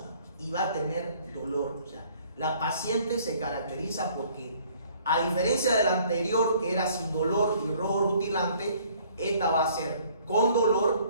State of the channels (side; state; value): both; inverted; correlation -0.59